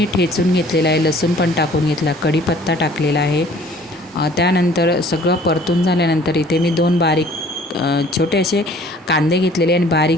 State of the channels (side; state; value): both; normal; correlation 0.53